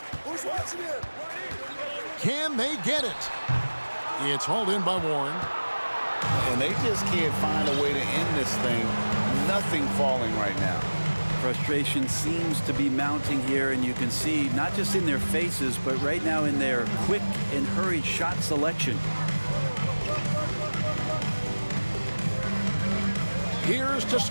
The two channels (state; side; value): inverted; both; correlation -1.00